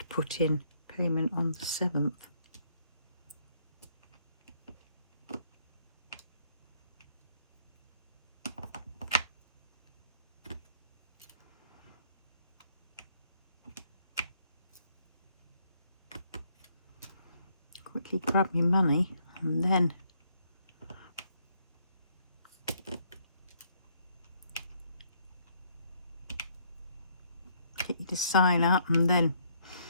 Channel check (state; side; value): inverted; both; correlation -0.69